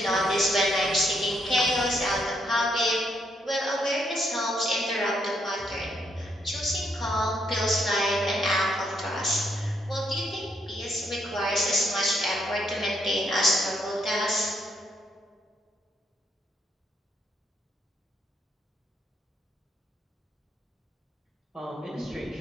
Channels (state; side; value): normal; both; correlation 0.74